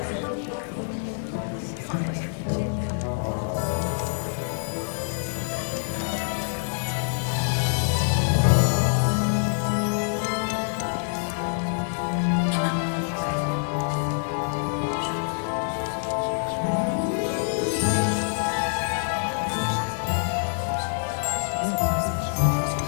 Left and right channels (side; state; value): right; silent; digital silence